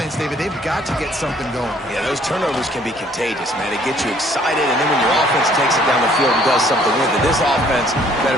David, they've got to get something going. Yeah, those turnovers can be contagious, man. They get you excited, and then when your offense takes it down the field and does something with it, this offense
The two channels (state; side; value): normal; both; correlation 0.60